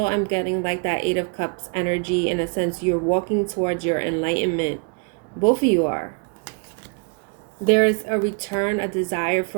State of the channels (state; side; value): quieter; left; 37.7 dB